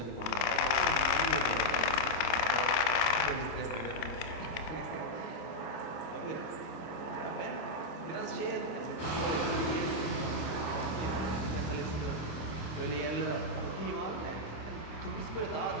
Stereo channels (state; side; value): late; right; 27 ms